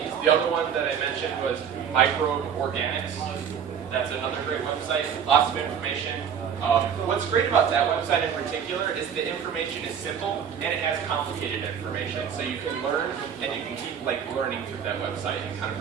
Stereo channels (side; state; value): left; quieter; 7.8 dB